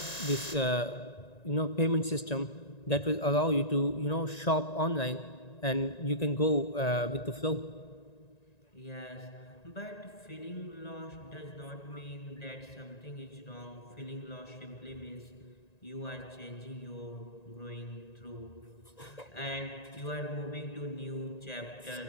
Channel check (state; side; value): late; right; 1.9 ms